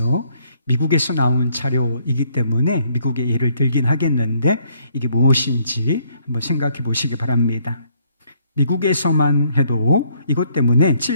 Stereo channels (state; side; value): inverted; both; correlation -0.67